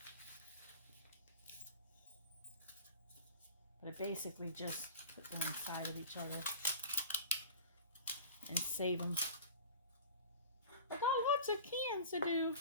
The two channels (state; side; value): inverted; both; correlation -0.38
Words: But I basically just put them inside of each other and save them. I got lots of cans to do.